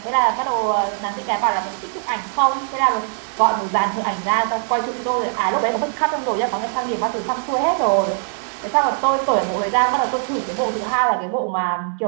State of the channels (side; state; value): left; silent; 64 dB below the other